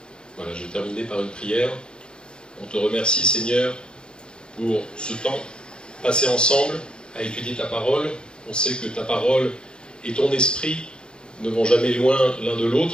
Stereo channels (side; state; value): right; late; 0.050 ms